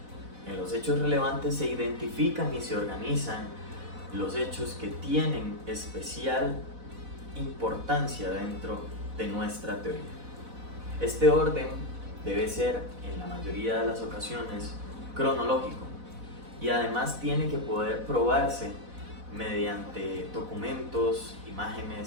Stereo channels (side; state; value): left; late; 4.1 ms